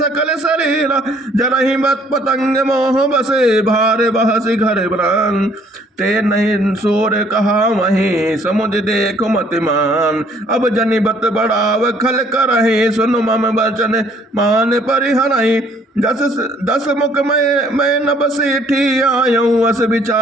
शरीरा। जरहि मत पतंग मोह बसे, भार बहसी घर ब्रान। ते नहीं सोर कहा वहीं, समुझ देख मतिमान। अब जनि बत बढ़ाव खल करहि, सुन मम वचन मान परिहरहि। दस मुख मैं न बसेठी आयऊं, अस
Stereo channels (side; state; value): both; normal; correlation 0.61